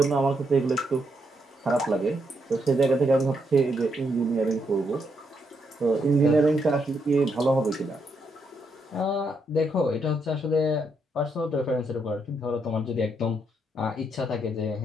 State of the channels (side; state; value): both; normal; correlation 0.78